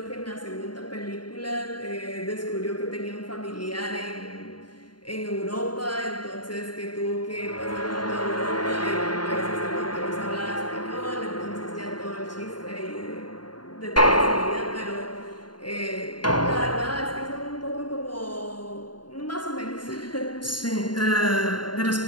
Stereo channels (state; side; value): late; right; 0.71 ms